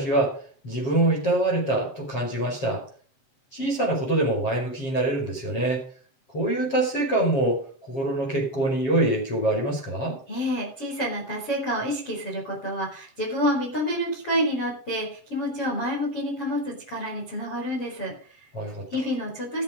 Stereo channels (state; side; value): late; right; 7.8 ms